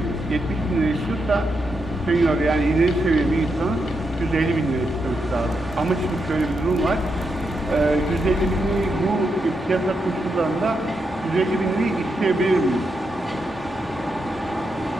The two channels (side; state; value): both; normal; correlation 0.83